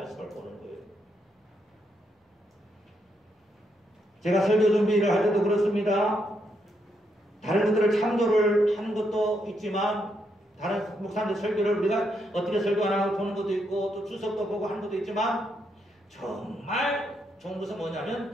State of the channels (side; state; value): both; normal; correlation 0.78